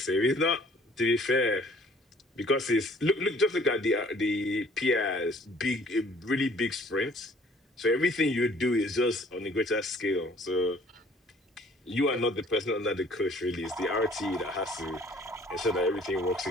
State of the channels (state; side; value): normal; both; correlation 0.56